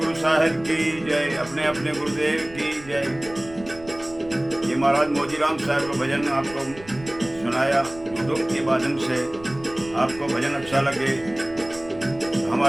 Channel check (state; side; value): noise; right; rumble, 19 dB below the sound